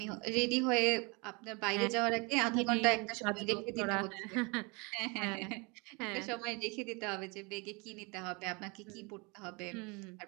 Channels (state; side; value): quieter; left; 29.3 dB